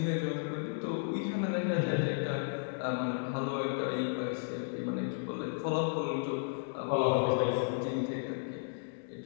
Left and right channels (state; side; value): silent; right; digital silence